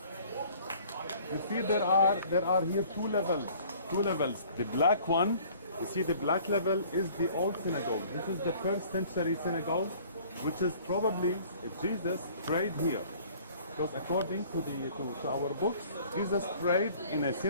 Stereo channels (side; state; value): both; inverted; correlation -0.53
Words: You see there are here two levels. The black one, you see the black level is the old synagogue. This is the 1st century synagogue, which is probably Jesus prayed here. Because according to our books, Jesus prayed in a